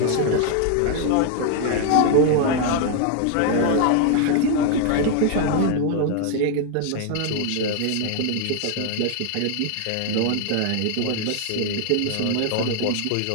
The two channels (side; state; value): both; different; correlation 0.00